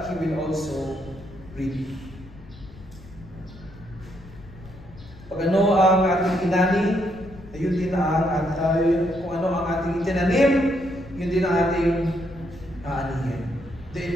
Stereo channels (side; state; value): left; noise; rumble, 19 dB below the sound